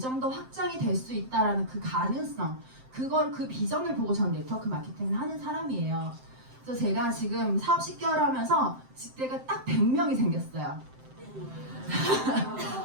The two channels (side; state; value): left; late; 7.7 ms